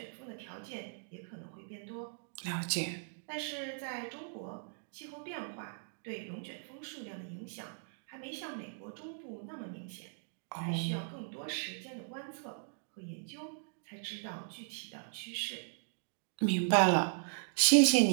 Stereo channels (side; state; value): left; silent; digital silence